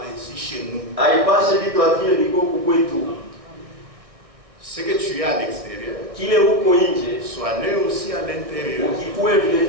ainsi chez nous. Haipashe vitu vile viko kwetu. Ce que tu as à l'extérieur, kile huko nje soit né aussi à l'intérieur. ukikuwe vile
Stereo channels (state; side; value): late; left; 1.6 ms